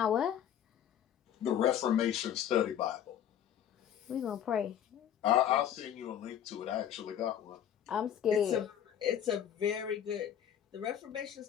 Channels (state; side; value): quieter; right; 9.8 dB